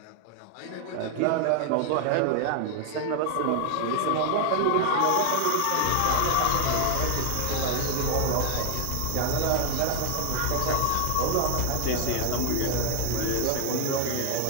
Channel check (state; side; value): different; both; correlation 0.00